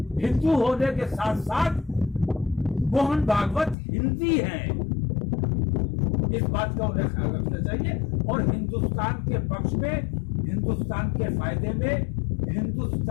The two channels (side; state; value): right; drops out; at 3.8 s